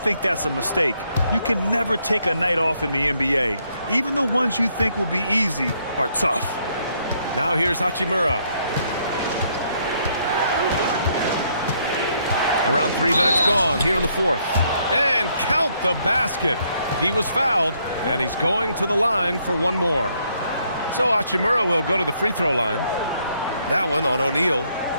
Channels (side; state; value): both; inverted; correlation -0.71